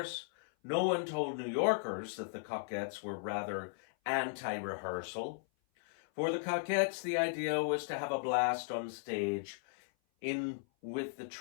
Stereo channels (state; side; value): silent; right; 53 dB below the other